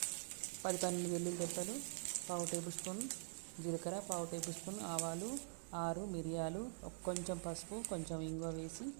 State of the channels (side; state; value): left; silent; digital silence